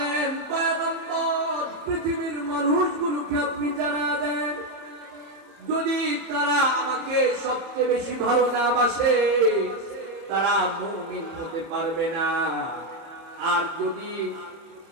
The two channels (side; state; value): left; late; 30 ms